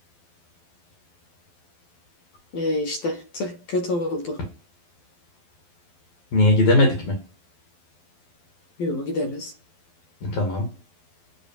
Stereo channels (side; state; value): right; late; 12 ms